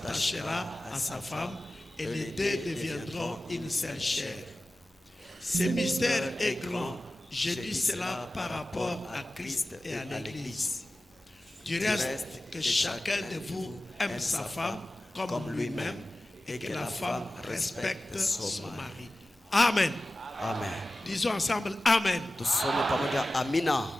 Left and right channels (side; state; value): both; normal; correlation 0.95